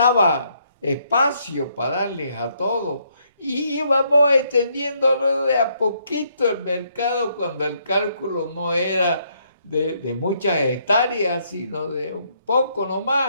espacio para darles a todos. Y íbamos extendiéndolo de a poquito el mercado cuando el cálculo no era de muchas hectáreas, sino de un poco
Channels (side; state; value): both; inverted; correlation -0.72